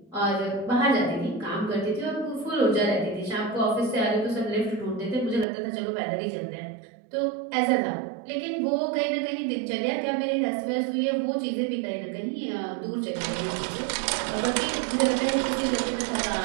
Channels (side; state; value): left; drops out; at 5.5 s